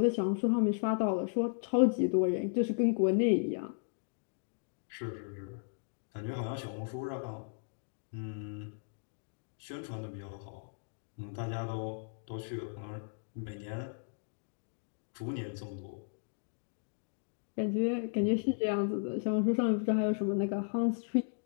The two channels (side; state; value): right; silent; digital silence